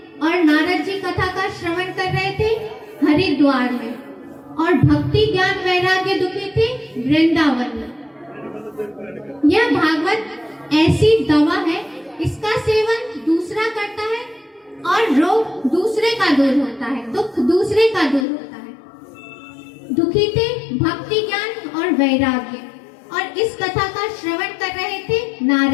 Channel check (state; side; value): drops out; right; at 18.2 s